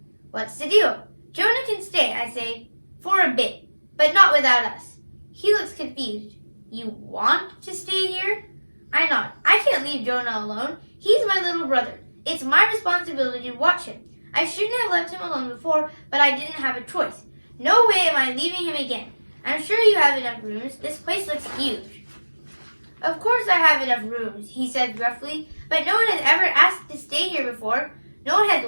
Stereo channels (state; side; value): inverted; both; correlation -1.00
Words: What's the deal? Jonah can stay, I say, for a bit, but not without us. He looks confused. You want to stay here? I nod. I can't leave Jonah alone. He's my little brother. It's my responsibility to watch him. I shouldn't have left him alone before, but I didn't have a choice. No way am I leaving him again. I'm sure you have enough rooms. This place looks huge. Of course I have enough rooms, he said gruffly, but no one has ever asked to stay here before. No one has